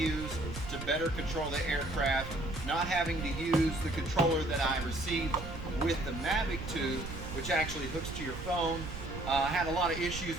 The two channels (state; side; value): noise; right; rumble, 9 dB below the sound